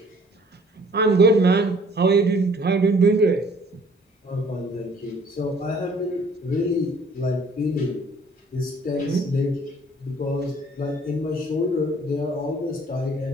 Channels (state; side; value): normal; both; correlation 0.57